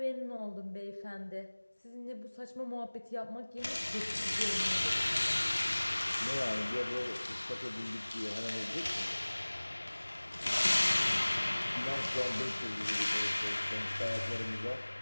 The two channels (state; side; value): inverted; both; correlation -1.00